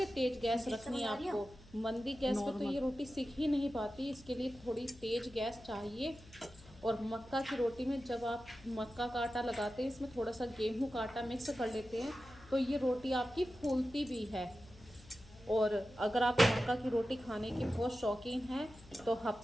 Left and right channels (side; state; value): left; noise; hum, 22 dB below the sound